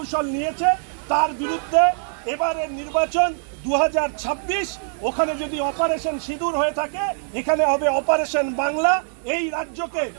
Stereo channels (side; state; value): left; silent; digital silence